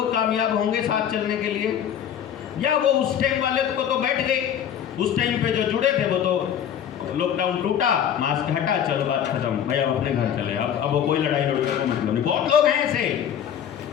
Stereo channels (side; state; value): right; quieter; 9.3 dB